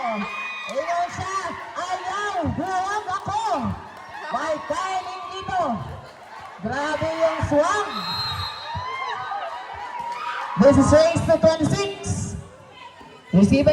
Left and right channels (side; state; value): both; identical; correlation 1.00